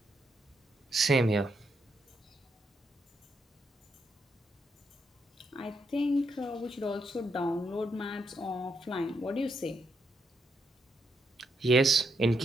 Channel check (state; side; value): normal; both; correlation 0.79